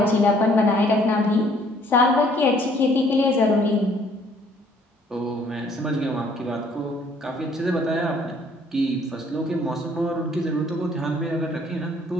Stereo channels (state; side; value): normal; both; correlation 0.61